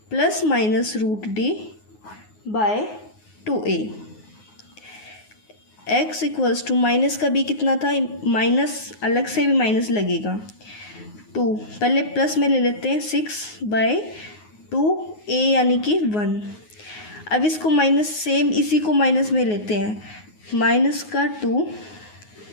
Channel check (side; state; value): right; late; 9.5 ms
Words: plus minus root D by 2a। x equals to minus का भी कितना था, माइनस अलग से भी माइनस लगेगा 2, पहले प्लस में ले लेते हैं 6 बाय 2a यानी कि 1। अब इसको माइनस सेम इसी को माइनस में लेते हैं, माइनस का 2